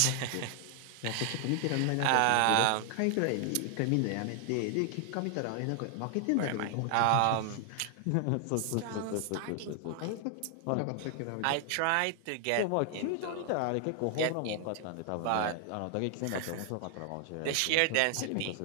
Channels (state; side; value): different; both; correlation 0.00